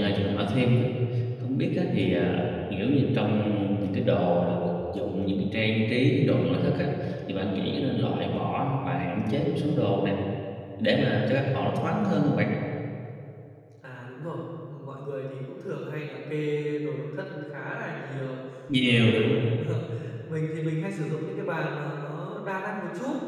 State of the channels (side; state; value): both; identical; correlation 1.00